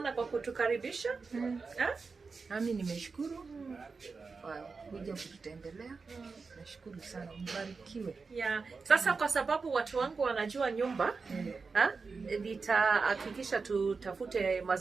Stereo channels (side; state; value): left; quieter; 4.6 dB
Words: kwa kutukaribisha. Nami nimeshukuru kwa kuja kututembelea. Nashukuru sana, mbarikiwe. Sasa kwa sababu watu wangu wanajua nyumba, nitahakikisha tutafute